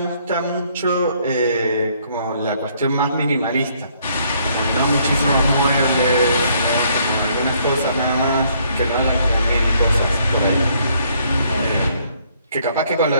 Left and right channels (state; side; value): inverted; both; correlation -0.67